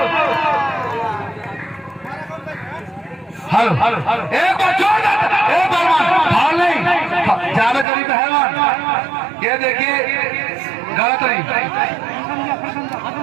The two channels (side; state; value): left; drops out; at 7.9 s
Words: हलो एक बार छोड़ एक पहलवान फाल नहीं जावेद गनी पहलवान ये देखिए गलत नहीं।